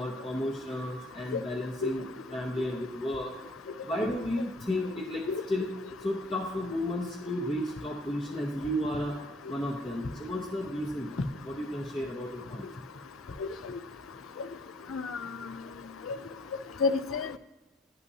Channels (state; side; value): normal; both; correlation 0.60